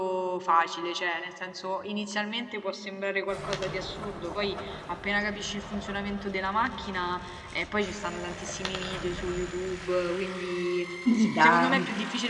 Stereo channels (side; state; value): both; identical; correlation 1.00